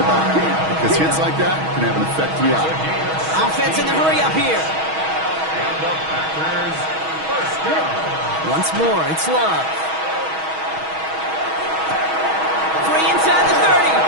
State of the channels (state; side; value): late; left; 6.3 ms